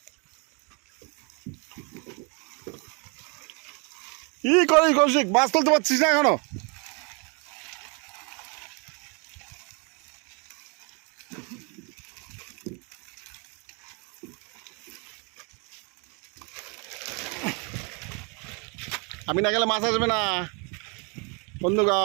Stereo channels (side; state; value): left; quieter; 33.8 dB